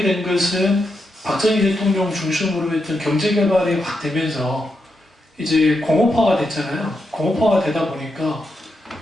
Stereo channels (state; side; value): normal; both; correlation 0.84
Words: 된 것은 박정희 대통령 중심으로 했던 경제개발이 확 되면서 이제 공업화가 됐잖아요. 공업화가 되다 보니까